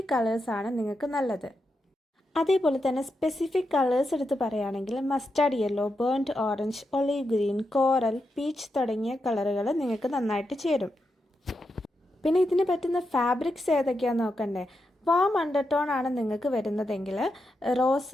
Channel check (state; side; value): normal; both; correlation 0.86